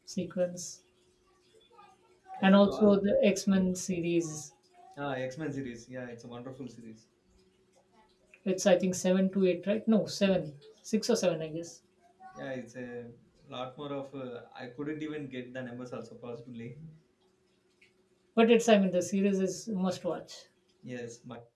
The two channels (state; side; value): identical; both; correlation 1.00